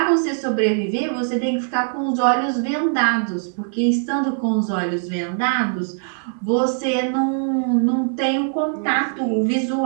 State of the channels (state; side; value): silent; left; 65 dB below the other